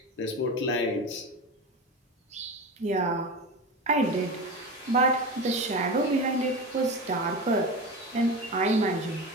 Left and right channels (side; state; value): both; normal; correlation 0.26